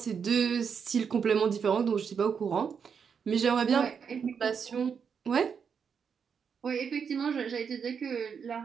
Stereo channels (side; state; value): left; quieter; 6.6 dB